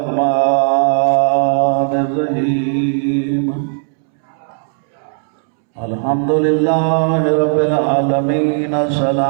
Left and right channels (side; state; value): left; silent; 69 dB below the other